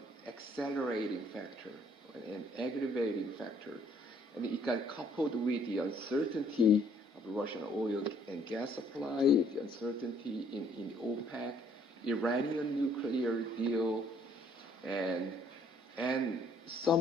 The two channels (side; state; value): both; normal; correlation 0.63